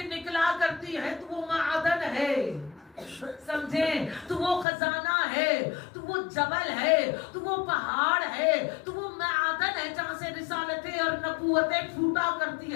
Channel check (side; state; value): right; drops out; at 4.7 s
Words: نکلا کرتی ہے تو وہ معدن ہے، سمجھیں، تو وہ خزانہ ہے، تو وہ جبل ہے، تو وہ پہاڑ ہے، تو وہ معدن ہے جہاں سے رسالتیں اور نبوتیں پھوٹا کرتی